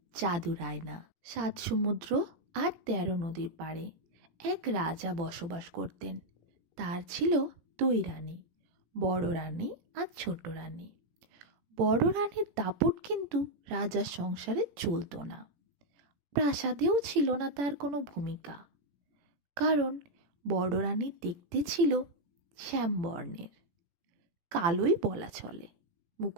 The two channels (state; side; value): late; left; 18 ms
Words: জাদুর আয়না। 7 সমুদ্র আর 13 নদীর পাড়ে এক রাজা বসবাস করতেন। তার ছিল 2 রানী, বড় রানী আর ছোট রানী। বড় রানীর দাপট কিন্তু রাজার সংসারে চলতো না। প্রাসাদেও ছিল না তার কোনো ভূমিকা, কারণ বড় রানী দেখতে ছিল শ্যামবর্ণের, কালোই বলা চলে।